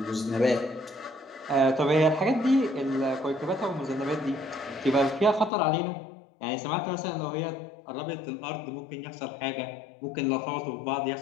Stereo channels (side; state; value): right; drops out; at 5.5 s